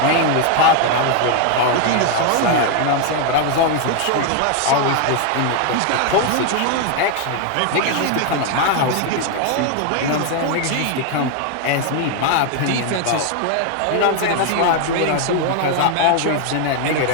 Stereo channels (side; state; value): both; different; correlation 0.01